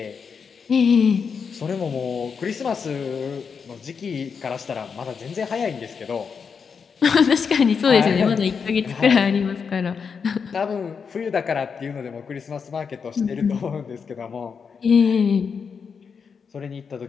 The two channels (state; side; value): quieter; right; 6.0 dB